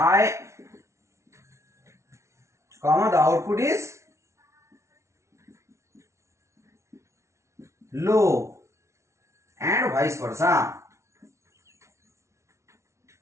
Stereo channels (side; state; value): left; late; 0.13 ms